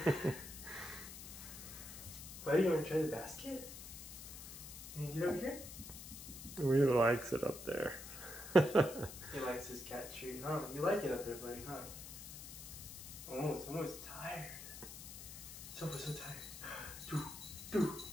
Buddy, you want to try the basket? Can you get over here? He really likes it up there. He likes his cat treat, huh? You like it up there, buddy, huh? Oh, it's almost tired. So tired.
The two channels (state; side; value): noise; left; hiss, 11 dB below the sound